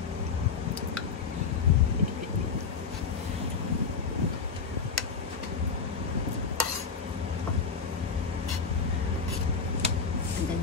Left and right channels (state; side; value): quieter; right; 5.4 dB